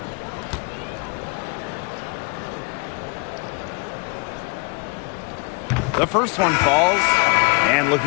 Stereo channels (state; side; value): quieter; right; 32.2 dB